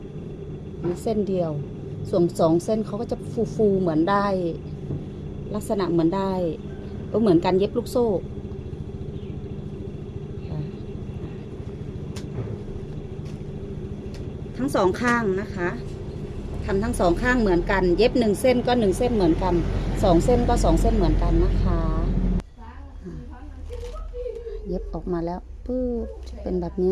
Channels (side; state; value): both; identical; correlation 1.00